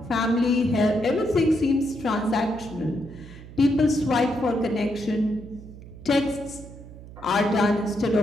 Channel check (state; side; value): noise; right; hum, 16 dB below the sound